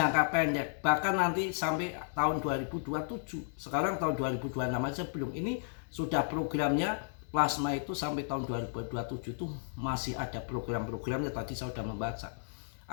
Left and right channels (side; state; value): right; silent; digital silence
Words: pendek. Bahkan nanti sampai tahun 2027. Sekarang tahun 2026 aja belum. Ini sudah programnya Plasma itu sampai tahun 2027 tuh masih ada program-programnya. Tadi saya sudah membaca.